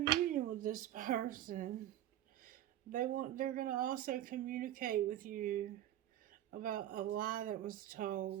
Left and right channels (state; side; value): quieter; left; 12.5 dB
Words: union with this person. They're going to also communicate with you about a lie that was